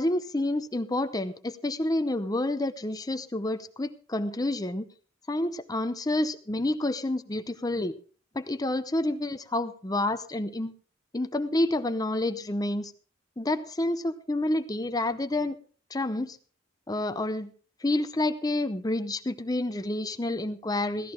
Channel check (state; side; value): normal; both; correlation 0.75